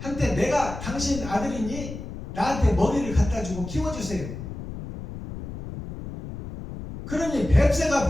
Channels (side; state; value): left; noise; rumble, 9 dB below the sound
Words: 내가 당신 아들이니 나한테 먹이를 갖다 주고 키워주세요. 그러니 뱁새가